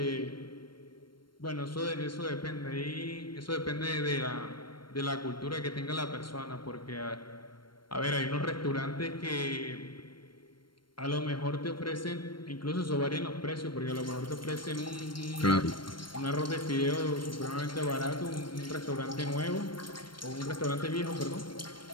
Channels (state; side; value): late; right; 0.72 ms